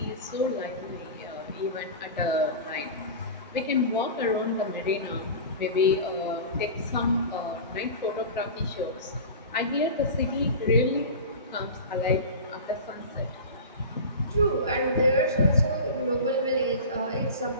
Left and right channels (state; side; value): inverted; both; correlation -0.31